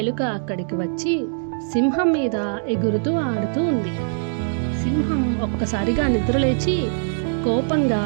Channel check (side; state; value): left; silent; digital silence